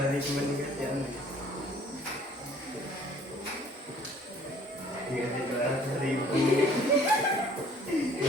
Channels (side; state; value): both; normal; correlation 0.55